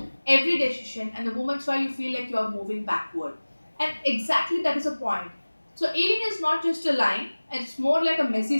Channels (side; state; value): both; inverted; correlation -1.00